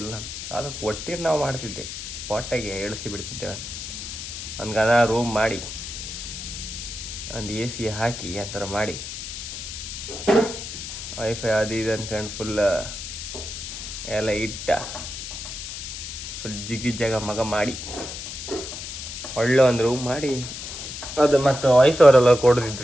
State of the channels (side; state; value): left; noise; hiss, 8 dB below the sound